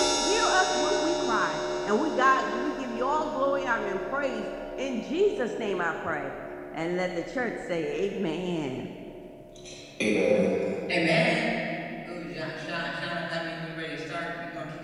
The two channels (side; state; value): both; identical; correlation 1.00